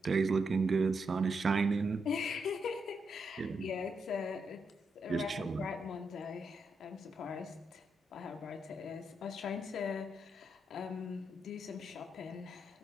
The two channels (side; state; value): both; normal; correlation 0.82